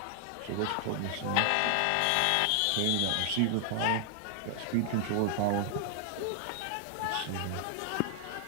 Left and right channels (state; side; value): different; both; correlation 0.00